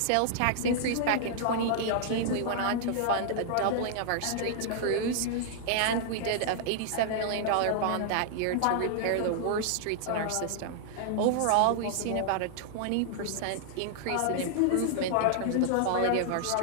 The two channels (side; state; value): both; different; correlation -0.01